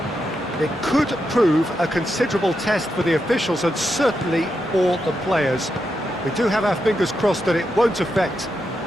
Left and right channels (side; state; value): both; normal; correlation 0.85